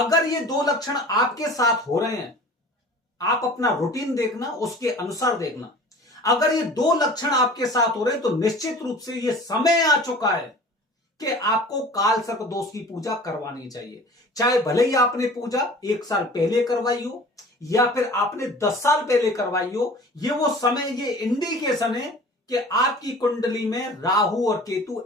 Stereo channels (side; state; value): both; normal; correlation 0.43